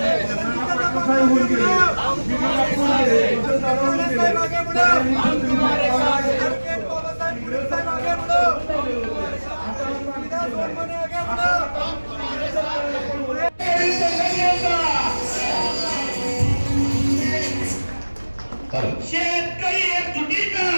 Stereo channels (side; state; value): both; inverted; correlation -1.00